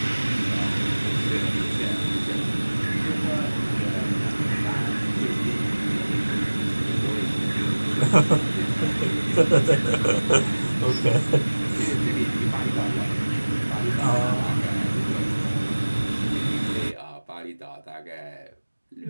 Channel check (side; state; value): both; inverted; correlation -1.00